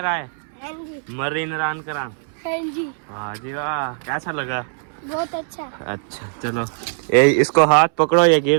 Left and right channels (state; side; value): silent; left; 65 dB below the other